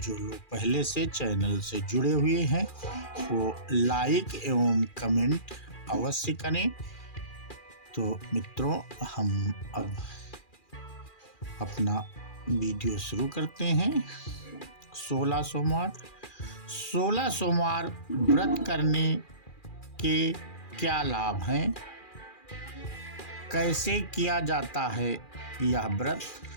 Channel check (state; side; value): late; right; 2.4 ms